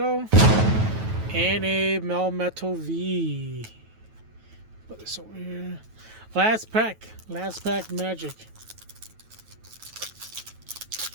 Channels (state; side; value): late; left; 9.2 ms